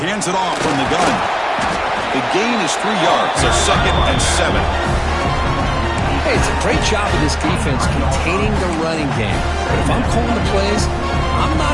hands it off from the gun. The gain is 3 yards, so 2nd and 7. Hey, it's a great job of this defense containing the running game. But if I'm calling the plays, I'm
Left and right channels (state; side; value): identical; both; correlation 1.00